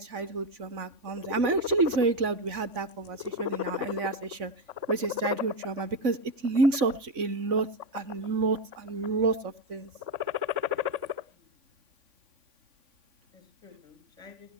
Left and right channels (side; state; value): left; late; 3.5 ms